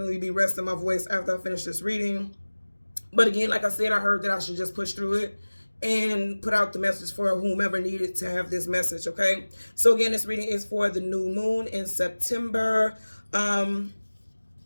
be resting my voice after I finish this reading. But again, like I said, I heard that I should just push through it and put out the message for whomever needed to have this message, okay? So again, this reading is for the new moon in September.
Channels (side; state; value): both; inverted; correlation -1.00